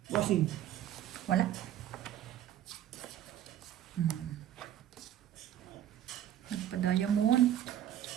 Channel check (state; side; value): quieter; left; 11.5 dB